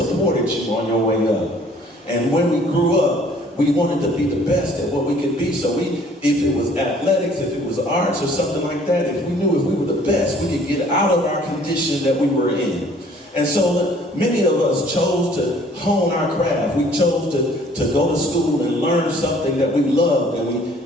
you on your way up. And when we grew up, we wanted to be the best at what we could be. So if it was athletics, if it was arts or something like that, if we knew if we were the best, we could get out of our condition that we were in. And so many of us chose to hone our craft. We chose to go to school and learn something that we loved, and we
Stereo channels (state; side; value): normal; both; correlation 0.56